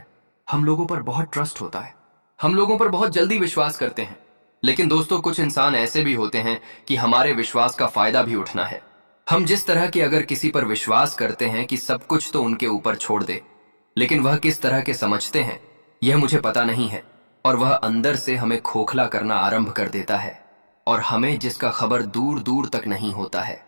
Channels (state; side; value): inverted; both; correlation -1.00